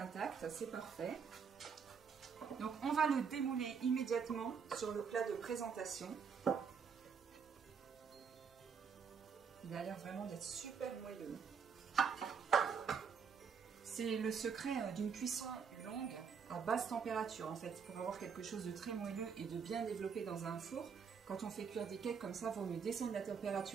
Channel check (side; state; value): left; quieter; 6.3 dB